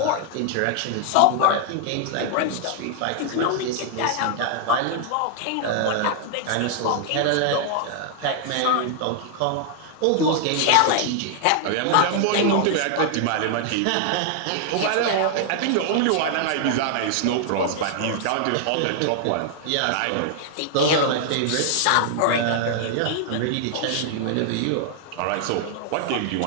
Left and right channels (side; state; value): both; different; correlation -0.01